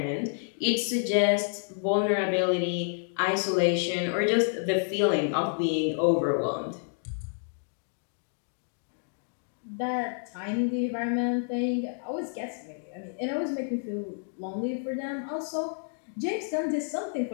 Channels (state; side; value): silent; right; digital silence